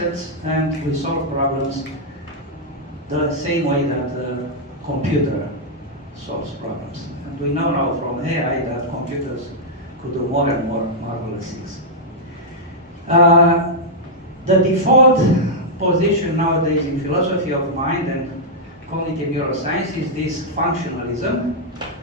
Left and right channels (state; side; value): normal; both; correlation -0.06